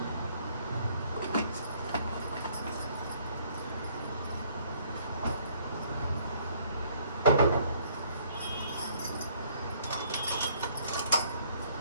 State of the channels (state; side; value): inverted; both; correlation -0.63